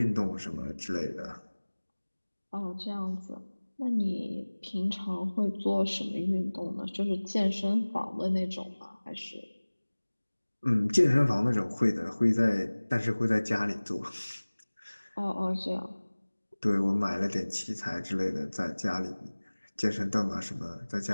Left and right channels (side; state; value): both; inverted; correlation -1.00